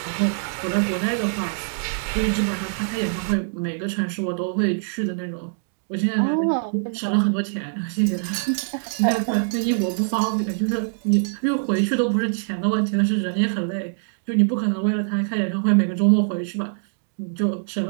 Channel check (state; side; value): silent; left; digital silence